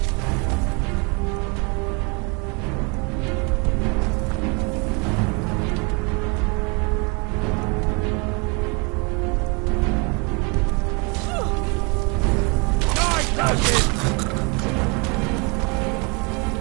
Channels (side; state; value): left; quieter; 31.1 dB